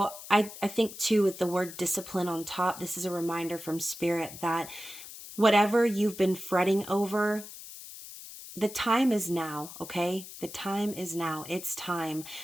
I think too, with the word discipline on top, this is a reminder from Spirit that whatever you've been fretting over, the time is now, okay? The time is now. It's time.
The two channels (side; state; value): left; noise; hiss, 14 dB below the sound